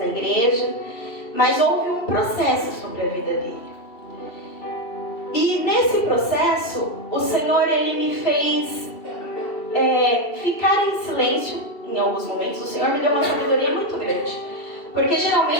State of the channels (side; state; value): right; late; 2.7 ms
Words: igreja, mas houve um processo sobre a vida dele. E nesse processo, o Senhor, ele me fez ficar em silêncio em alguns momentos. O Senhor me deu uma sabedoria muito grande. Porque